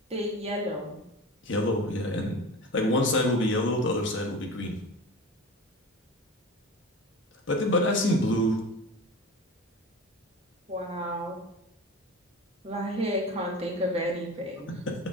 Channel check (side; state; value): both; normal; correlation 0.33